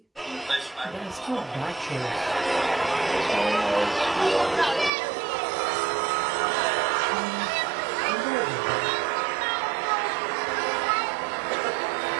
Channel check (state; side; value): drops out; left; at 4.9 s